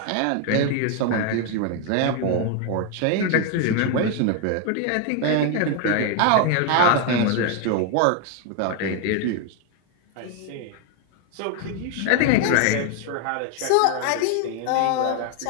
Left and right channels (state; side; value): different; both; correlation 0.01